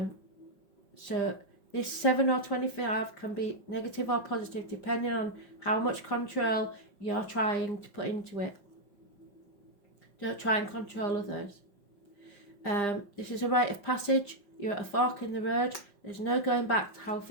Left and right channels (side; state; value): right; late; 5.0 ms